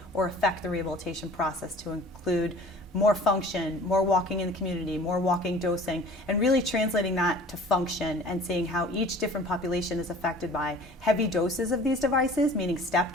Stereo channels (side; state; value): both; normal; correlation 0.46